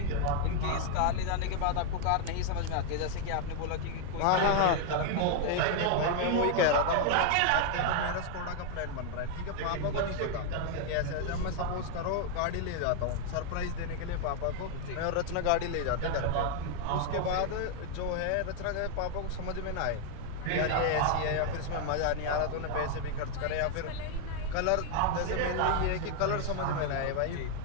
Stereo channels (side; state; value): both; different; correlation 0.00